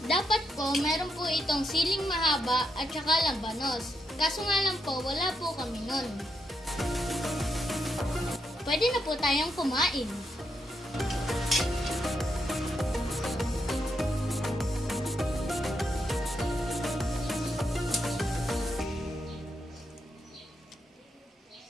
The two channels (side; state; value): both; normal; correlation 0.81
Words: Dapat po, meron po itong siling mahaba at saka labanos. Kaso nga lang po, wala po kami nun. Pwede na po tayong kumain.